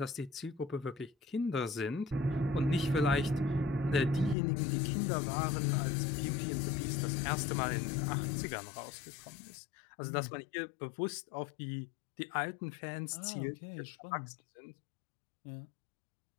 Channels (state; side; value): drops out; right; at 4.4 s